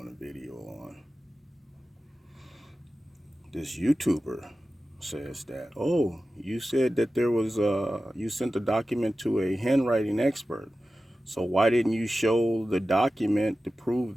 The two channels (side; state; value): both; normal; correlation 0.94